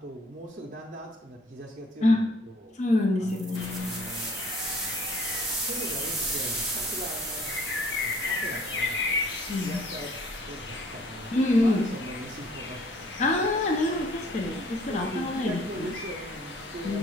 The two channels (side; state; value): both; normal; correlation 0.57